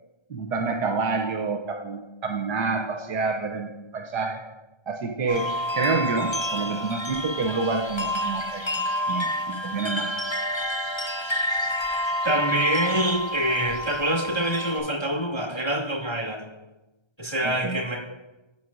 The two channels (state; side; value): late; right; 1.3 ms